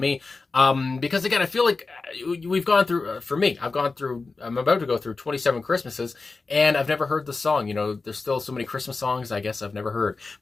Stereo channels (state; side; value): quieter; right; 3.9 dB